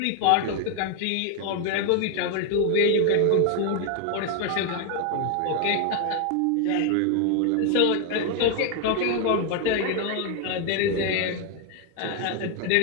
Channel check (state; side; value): different; both; correlation 0.01